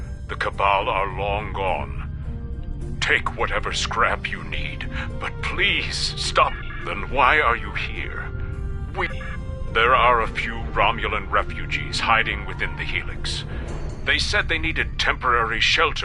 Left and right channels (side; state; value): both; identical; correlation 1.00